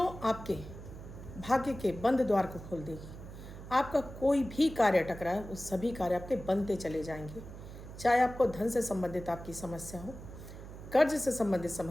आपके भाग्य के बंद द्वार को खोल देगी। आपका कोई भी कार्य अटक रहा है, वो सभी कार्य आपके बनते चले जाएंगे। चाहे आपको धन से संबंधित आपकी समस्या हो, कर्ज से संबंधित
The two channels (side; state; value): right; noise; hum, 13 dB below the sound